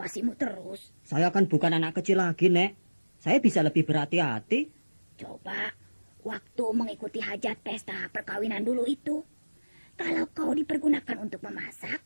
terus. Saya kan bukan anak kecil lagi, Nek. Saya bisa lebih berhati-hati. Coba, waktu mengikuti hajat pesta perkawinan dulu itu, kalau kau dipergunakan untuk memasak,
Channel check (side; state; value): both; inverted; correlation -1.00